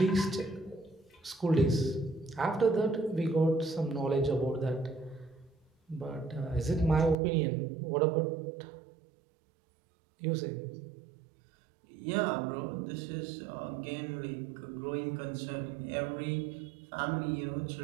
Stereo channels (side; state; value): left; drops out; at 7.2 s